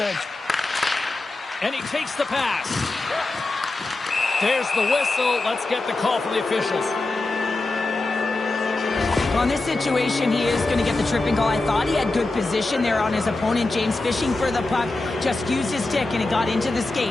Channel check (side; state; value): right; quieter; 3.1 dB